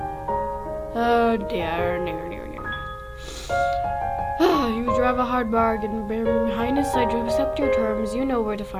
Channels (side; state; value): both; identical; correlation 1.00